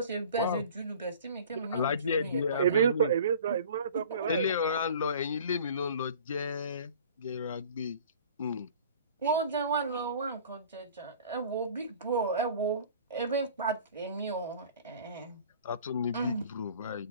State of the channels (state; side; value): inverted; both; correlation -0.45